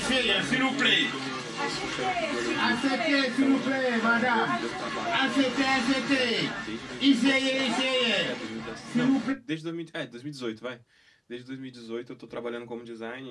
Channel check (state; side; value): identical; both; correlation 1.00